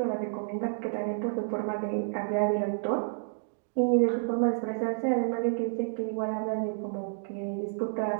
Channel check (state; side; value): silent; left; digital silence